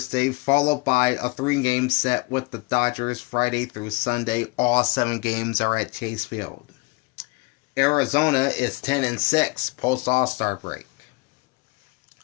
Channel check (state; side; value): quieter; right; 26.6 dB